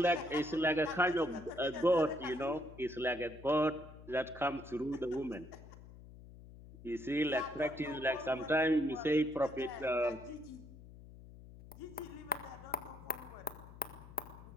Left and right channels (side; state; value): left; noise; hum, 17 dB below the sound